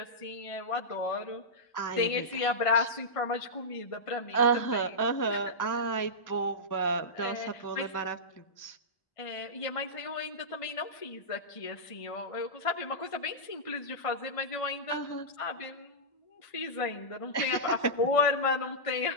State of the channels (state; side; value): late; right; 1.5 ms